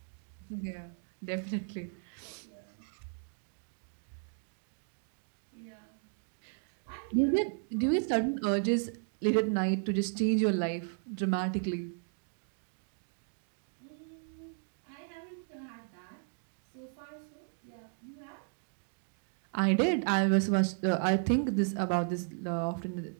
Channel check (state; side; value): silent; left; 55 dB below the other